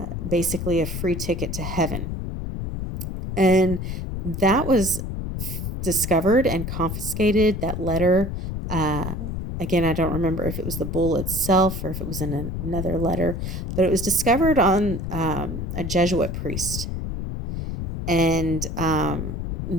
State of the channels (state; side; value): noise; left; rumble, 4 dB below the sound